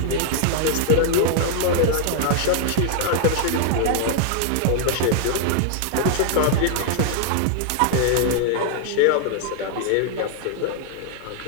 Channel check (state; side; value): different; both; correlation 0.00